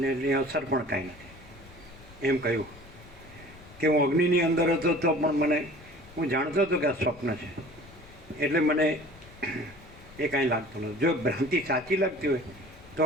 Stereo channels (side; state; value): left; noise; rumble, 22 dB below the sound